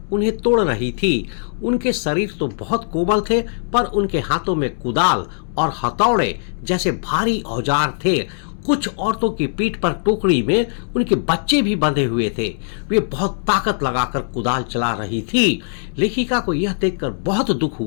उन्हें तोड़ रही थी। उनके शरीर तो बहुत कोमल थे, पर उनके हाथों में कुदाल और हथौड़े जैसे भारी औजार थे। कुछ औरतों की पीठ पर टोकरी में उनके बच्चे भी बंधे हुए थे। वे बहुत ताकत लगाकर कुदाल चला रही थी। लेखिका को यह देखकर बहुत दुख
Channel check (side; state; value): right; silent; digital silence